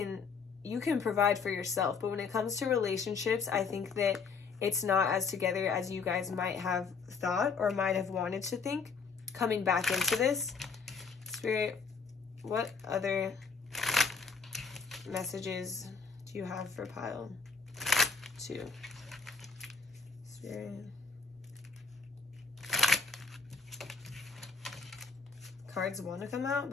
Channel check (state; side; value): quieter; right; 5.2 dB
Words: provide for yourself. But when it comes to relationships, I think that it's not as together as you guys might have thought or might have wanted to think coming back into this. Spirit, what other messages do you have for pile 2? Spirit. Cards want to come out,